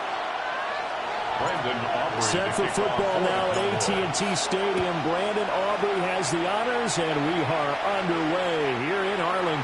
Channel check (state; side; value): identical; both; correlation 1.00